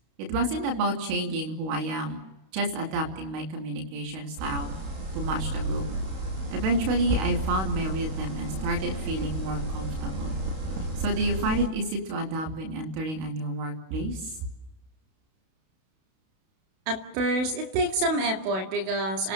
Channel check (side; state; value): left; late; 32 ms